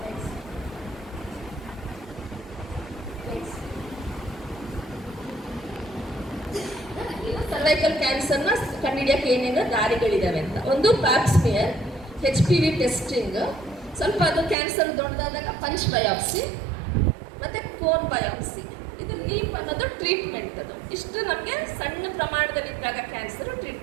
ಸರ್ವೈಕಲ್ ಕ್ಯಾನ್ಸರ್ನ ಕಂಡುಹಿಡಿಯಕ್ಕೆ ಏನೇನು ದಾರಿಗಳಿದಾವೆ ಅಂತ. ಒಂದು ಪ್ಯಾಪ್ಸ್ಮಿಯರ್, HPV ಟೆಸ್ಟಿಂಗ್, ಸ್ವಲ್ಪ ಅದು ಕ್ಯಾನ್ಸರ್ ದೊಡ್ಡದಾದಾಗ ಪಂಚ್ ಬಯಾಪ್ಸಿ ಮತ್ತು ಕೋನ್ ಬಯಾಪ್ಸಿ. ಇದು ಲೀಪ್ ಅನ್ನೋದು ಟ್ರೀಟ್ಮೆಂಟ್. ಅದು ಇಷ್ಟು ನಮಗೆ ಸಣ್ಣ ಪ್ರಮಾಣದಲ್ಲಿದ್ದಾಗ ಕ್ಯಾನ್ಸರ್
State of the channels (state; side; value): drops out; left; at 14.6 s